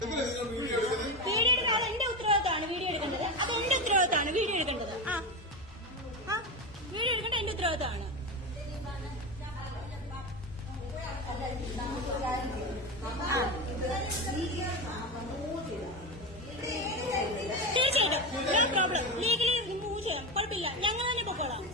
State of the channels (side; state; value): both; normal; correlation 0.18